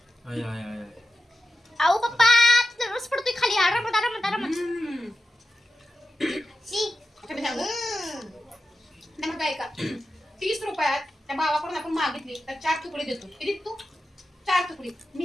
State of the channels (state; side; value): normal; both; correlation 0.91